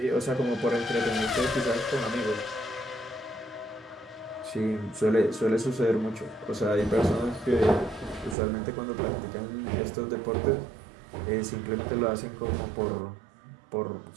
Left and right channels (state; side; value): drops out; left; at 8.3 s